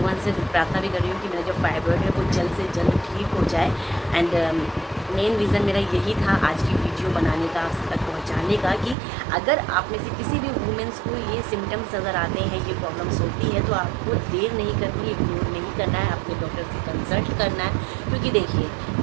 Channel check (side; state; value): left; drops out; at 9.0 s